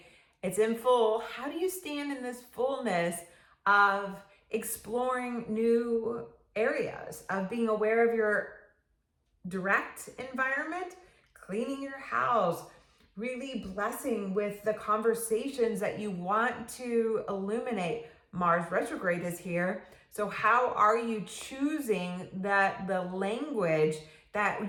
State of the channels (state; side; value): identical; both; correlation 1.00